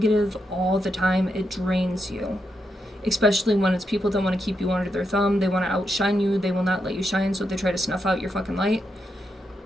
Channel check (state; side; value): normal; both; correlation 0.83